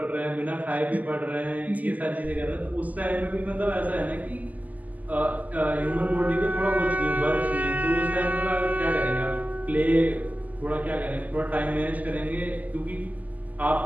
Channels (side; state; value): left; late; 0.078 ms